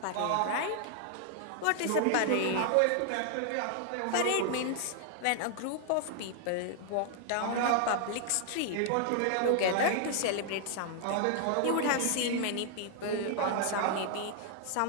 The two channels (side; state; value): both; different; correlation 0.00